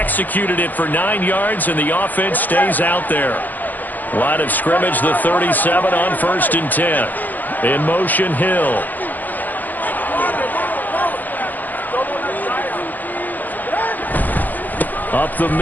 it for 9 yards, and the offense stays out there. Line of scrimmage, the 37 on 1st and 10. In motion, Hill. Up the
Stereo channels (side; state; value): right; late; 0.084 ms